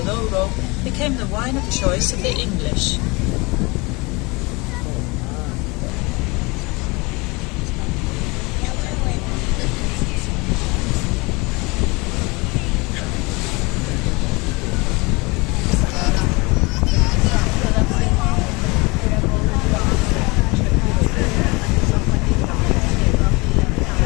Douro, became the wine of choice of the English.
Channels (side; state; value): right; quieter; 26.1 dB